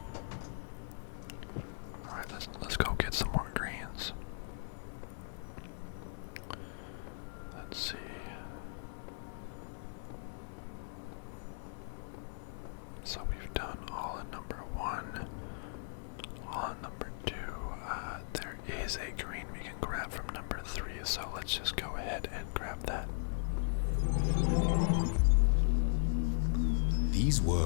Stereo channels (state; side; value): silent; right; digital silence